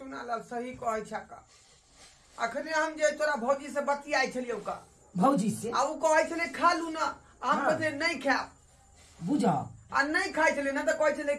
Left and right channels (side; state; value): both; identical; correlation 1.00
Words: सही कहै छ का। अखने हम जे तोरा भौजी से बतियाई छलियौ का, भौजी से आ उ कहै छले खा लू ना, हम हाँ। कहले नहीं खाओ बुझा आ नहीं खाई छले ना, तो कहै छले